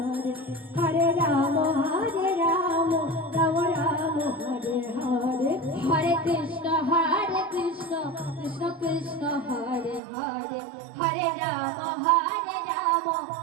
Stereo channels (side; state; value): left; drops out; at 10.0 s